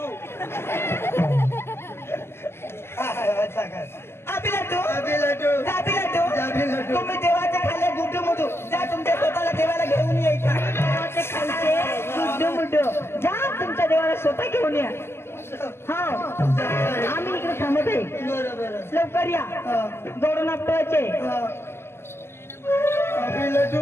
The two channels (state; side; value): late; right; 0.12 ms